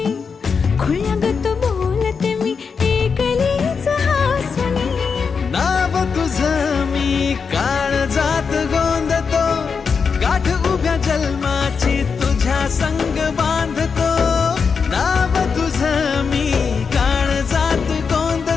खोळ्यागत बोलते मी ही गलीच हासुनी. नाव तुझं मी काळजात गोंधतो, गाठ उभ्या जन्माची तुझ्या संग बांधतो, नाव तुझं मी काळजात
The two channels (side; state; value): right; quieter; 5.6 dB